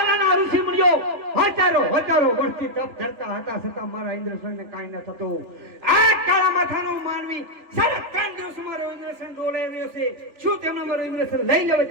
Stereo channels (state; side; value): late; left; 3.4 ms